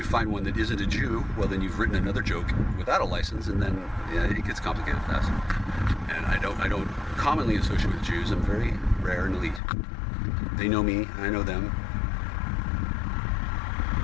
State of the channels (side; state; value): right; drops out; at 9.6 s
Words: find one that isn't a Jew, well then you've written another joke without a license, and then it gets complicated fast. And I don't commonly associate with Jews. I'm very rare and elite. They know me, I know them.